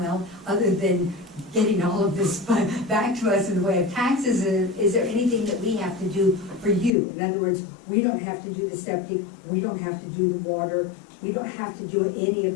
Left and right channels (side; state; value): right; drops out; at 7.0 s